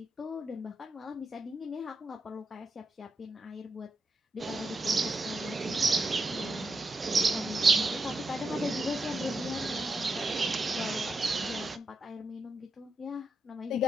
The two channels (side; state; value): both; normal; correlation 0.85